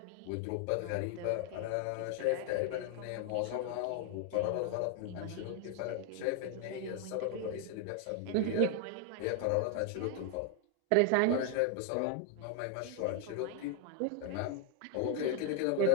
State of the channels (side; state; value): both; different; correlation 0.00